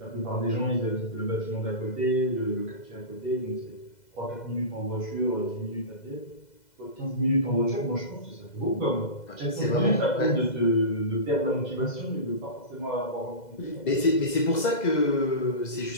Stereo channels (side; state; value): right; late; 2.0 ms